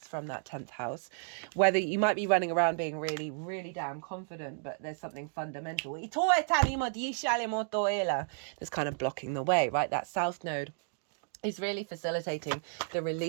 from that 10th house. Whether you might be running around being really, really damn confident, but there's something fundamental that's kind of blocking the way, right? That south node is really facilitating the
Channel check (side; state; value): left; silent; digital silence